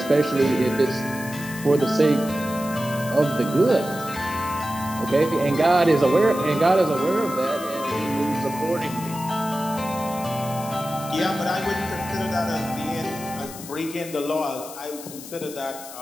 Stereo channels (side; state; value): left; noise; hiss, 14 dB below the sound